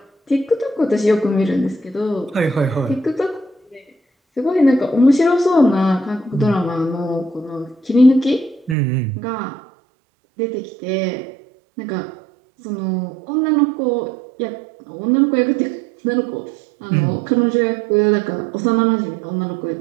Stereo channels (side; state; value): left; drops out; at 8.8 s